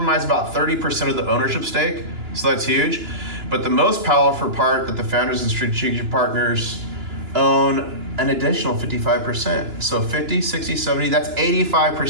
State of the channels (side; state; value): left; late; 2.9 ms